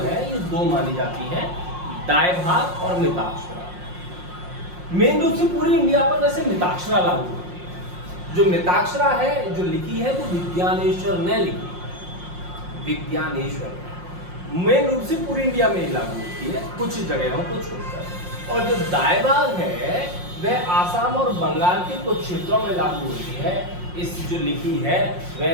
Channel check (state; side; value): late; left; 5.6 ms